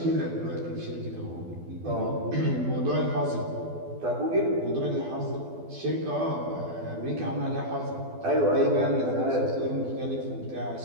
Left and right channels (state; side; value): late; left; 12 ms